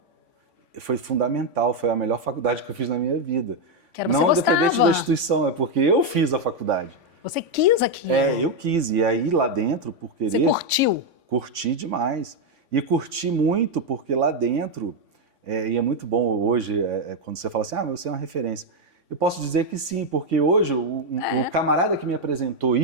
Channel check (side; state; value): left; late; 3.5 ms